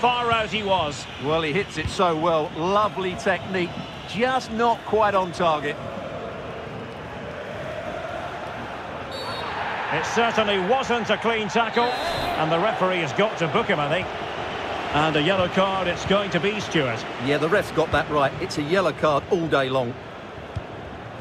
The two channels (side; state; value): both; identical; correlation 1.00